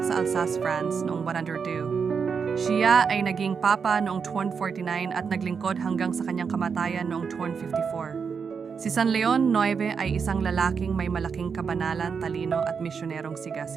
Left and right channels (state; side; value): quieter; left; 6.0 dB